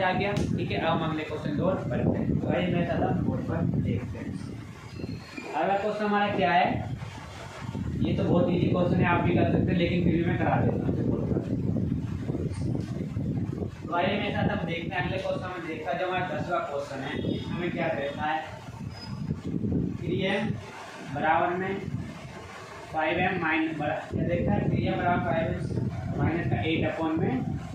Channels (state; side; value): identical; both; correlation 1.00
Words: आ गया, ठीक है। अब हम अगले क्वेश्चन की ओर बढ़ते हैं। तो आइए मैं सादा बोर्ड पर देखते हैं। अगला क्वेश्चन हमारा क्या है, ये तो बहुत इजी क्वेश्चन है, आप भी कर सकते हैं, लेकिन फिर भी मैं करा देता हूँ। तो आइए मेरे साथ अब देखते हैं अगले क्वेश्चन में। देखा जो हमारा 10वां क्वेश्चन है, इसमें क्या कहता है, 3m बराबर में 5m माइनस क्या देखता है, 3m बराबर 5m माइनस का 8 में